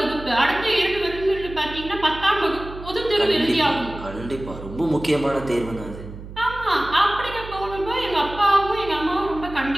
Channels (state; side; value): noise; right; hum, 13 dB below the sound